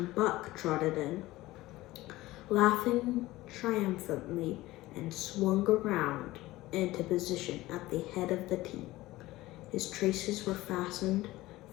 Buck trotted in, laughing triumphantly, and swung around into position at the head of the team. His traces were fastened,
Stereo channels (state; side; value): quieter; right; 17.9 dB